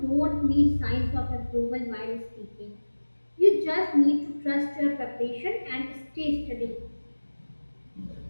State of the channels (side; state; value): both; inverted; correlation -1.00